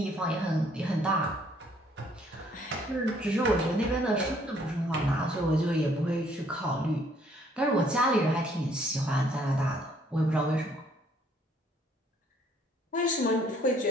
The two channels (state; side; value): normal; both; correlation 0.64